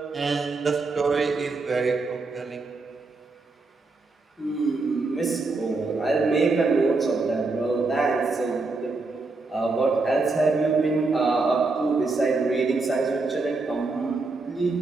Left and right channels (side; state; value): left; quieter; 3.7 dB